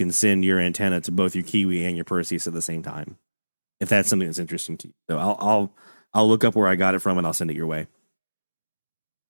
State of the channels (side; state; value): both; inverted; correlation -1.00